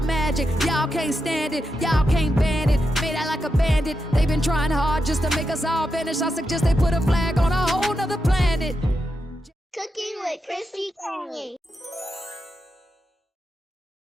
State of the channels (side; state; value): both; normal; correlation 0.86